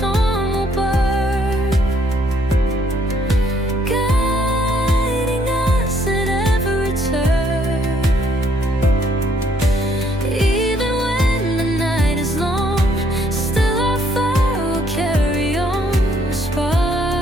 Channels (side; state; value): both; normal; correlation 0.67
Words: will burn, guiding us at every turn. Even when the night is long, still our fire will carry on. A